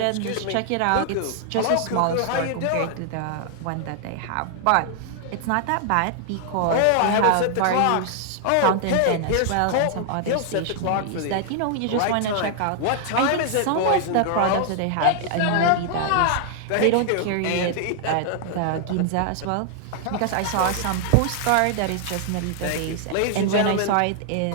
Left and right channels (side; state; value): both; different; correlation 0.00